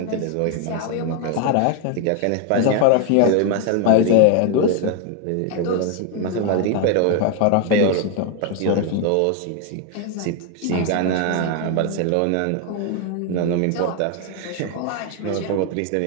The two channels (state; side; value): different; both; correlation 0.01